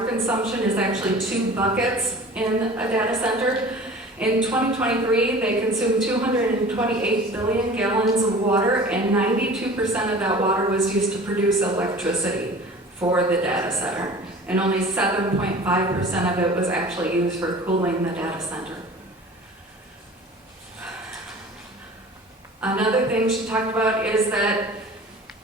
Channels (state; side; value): normal; both; correlation 0.42